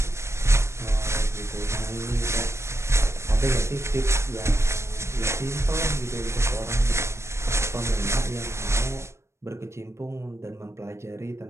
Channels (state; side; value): late; left; 0.13 ms